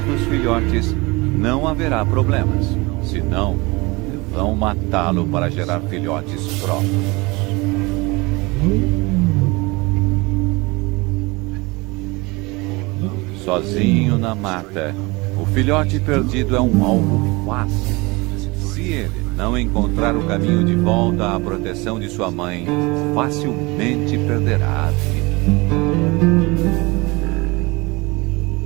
dos filhotes, não haverá problemas. Senão, vão matá-lo para gerar filhotes próprios. Sozinho na mata, o filhote perdido é um alvo fácil. Se ele não encontrar o caminho de volta à proteção de sua mãe, facilmente perderá a vida.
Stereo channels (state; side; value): quieter; left; 24.7 dB